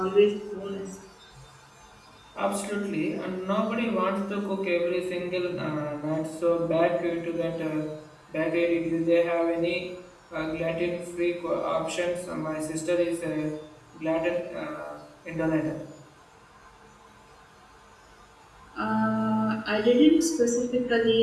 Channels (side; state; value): both; identical; correlation 1.00